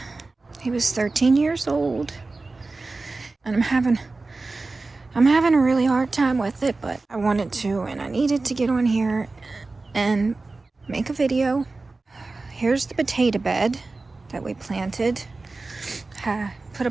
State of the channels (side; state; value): left; quieter; 3.5 dB